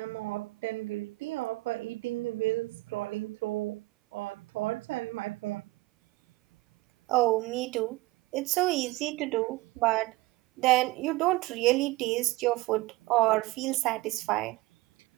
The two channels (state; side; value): quieter; left; 20.5 dB